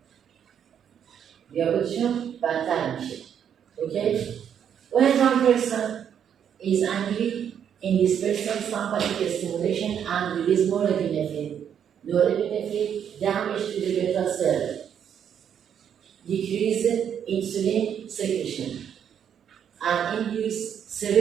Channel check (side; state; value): left; quieter; 8.6 dB